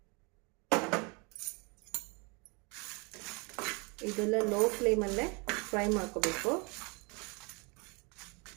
ಇದೆಲ್ಲ ಲೋ ಫ್ಲೇಮಲ್ಲೇ ಫ್ರೈ ಮಾಡ್ಕೋಬೇಕು.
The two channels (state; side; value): quieter; left; 30.5 dB